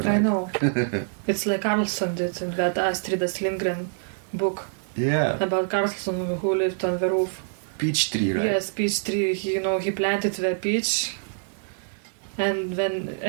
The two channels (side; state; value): left; silent; 55 dB below the other